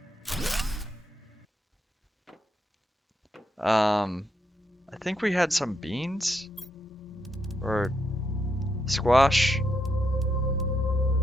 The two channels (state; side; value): normal; both; correlation 0.81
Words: I think we had some beans or squash.